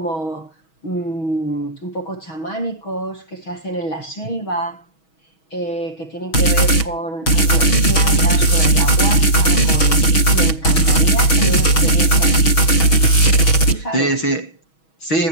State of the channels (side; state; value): right; late; 6.2 ms